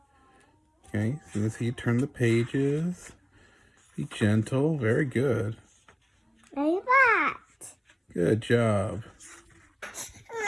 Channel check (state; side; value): identical; both; correlation 1.00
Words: Okay, so let's see you turn the pages. Be gentle. Very good. Like that. Good job.